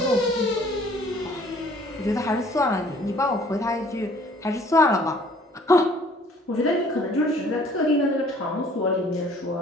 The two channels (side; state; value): both; normal; correlation 0.56